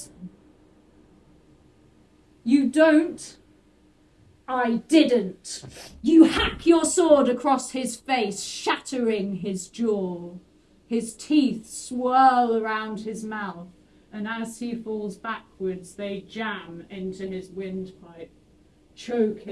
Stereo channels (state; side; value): identical; both; correlation 1.00